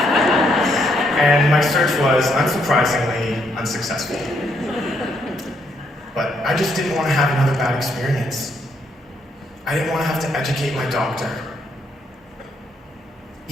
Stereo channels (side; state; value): both; normal; correlation 0.73